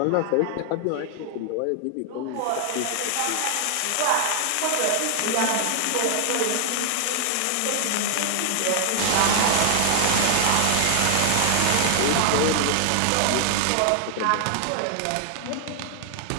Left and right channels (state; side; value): different; both; correlation 0.00